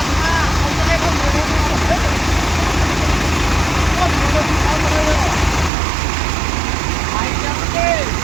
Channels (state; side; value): drops out; left; at 5.7 s